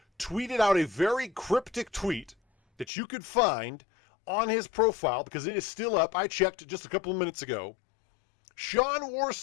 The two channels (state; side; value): drops out; right; at 2.9 s